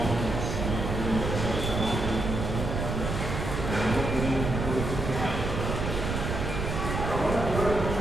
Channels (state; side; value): noise; right; rumble, 3 dB below the sound